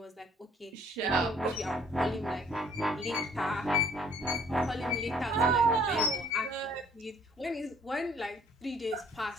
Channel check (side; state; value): both; normal; correlation 0.58